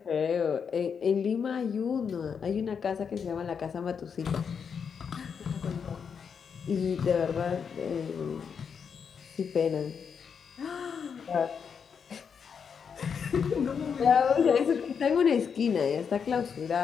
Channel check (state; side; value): quieter; right; 6.6 dB